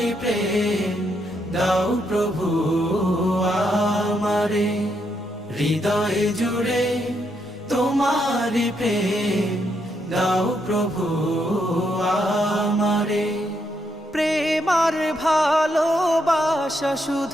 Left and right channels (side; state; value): both; normal; correlation 0.78